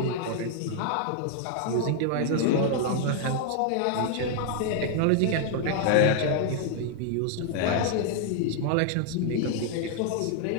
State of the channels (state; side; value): different; both; correlation 0.00